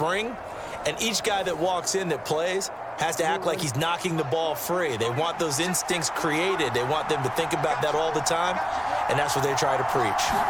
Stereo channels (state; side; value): identical; both; correlation 1.00